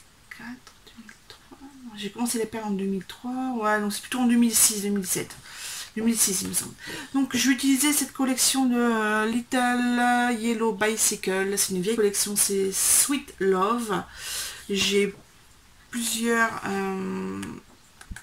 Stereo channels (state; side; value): identical; both; correlation 1.00